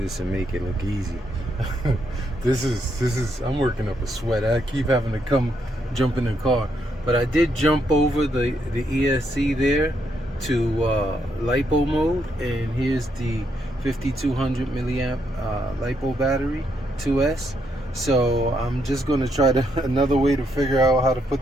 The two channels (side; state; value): both; normal; correlation 0.77